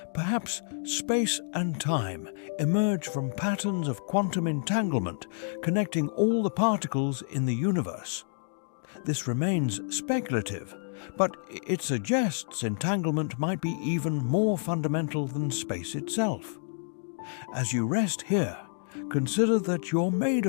Perhaps space and time emerge from patterns of quantum entanglement connecting all the particles in the universe. This remains speculative, but it suggests entanglement might be even more fundamental than space itself. As you rest here, consider that you're made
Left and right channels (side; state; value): right; silent; digital silence